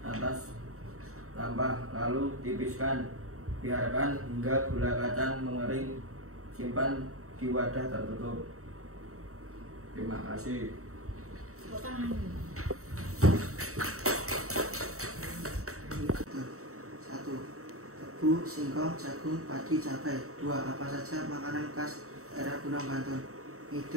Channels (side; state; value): left; late; 0.64 ms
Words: atas sampah, lalu tipiskan, biarkan hingga gula kacang mengering, simpan di wadah tertutup. Terima kasih. Tebu, singkong, jagung, padi, cabai. 2. Apa saja makanan khas daerah Pundong, Bantul?